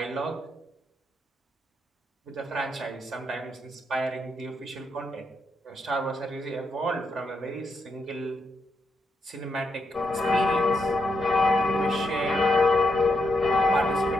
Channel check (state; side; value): normal; both; correlation 0.81